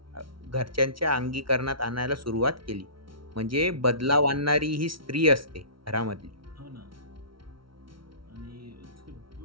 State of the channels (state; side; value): late; left; 0.74 ms